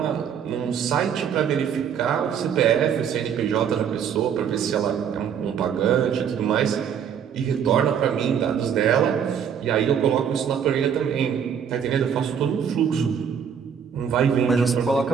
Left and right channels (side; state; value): left; quieter; 7.9 dB